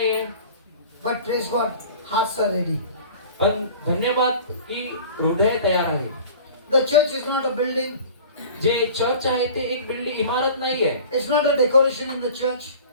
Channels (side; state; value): both; inverted; correlation -0.42